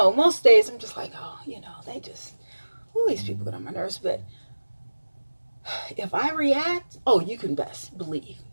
most days I'm just like, oh, they just, these people get on my nerves. But if I react, oh, you can best believe,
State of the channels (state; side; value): inverted; both; correlation -1.00